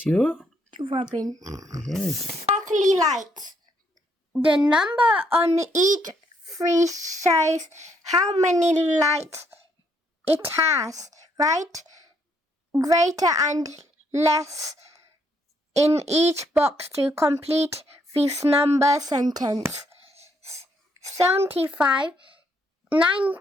your robin. Yes. Sparkly lights. The number on each tree shows how many lights it has, right? Greater and less in each box to complete this number sentence. 75,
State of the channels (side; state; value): both; normal; correlation 0.72